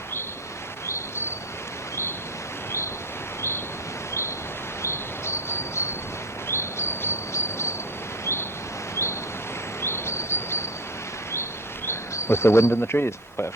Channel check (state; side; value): normal; both; correlation 0.25